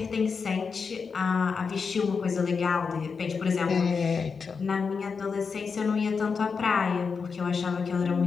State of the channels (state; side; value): quieter; right; 5.4 dB